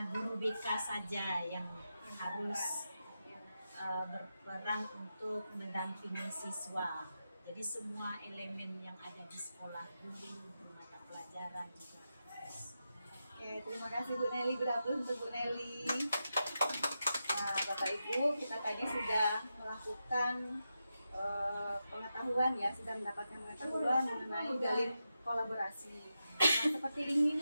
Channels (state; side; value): inverted; both; correlation -0.89